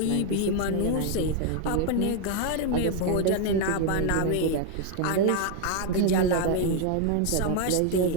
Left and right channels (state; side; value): different; both; correlation 0.01